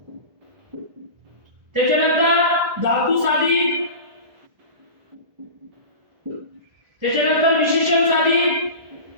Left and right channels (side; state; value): left; late; 1.5 ms